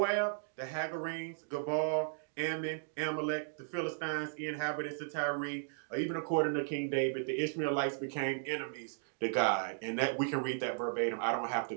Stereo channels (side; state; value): left; silent; digital silence